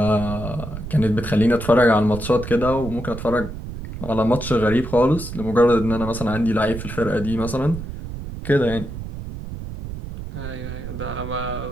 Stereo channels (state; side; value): noise; right; rumble, 9 dB below the sound